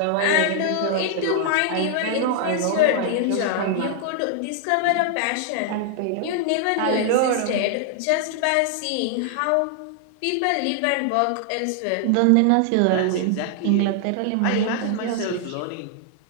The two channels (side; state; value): both; different; correlation 0.00